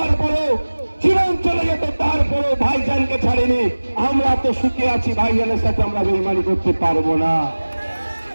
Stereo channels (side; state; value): both; inverted; correlation -1.00